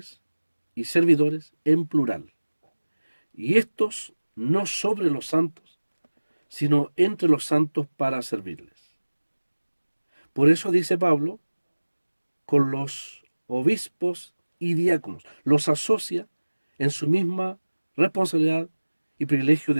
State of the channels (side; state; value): both; inverted; correlation -1.00